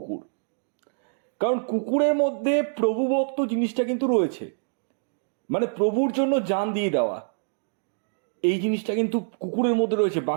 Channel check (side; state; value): left; silent; digital silence